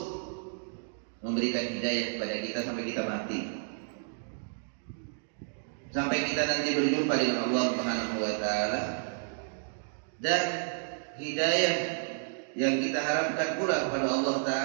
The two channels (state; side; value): silent; left; digital silence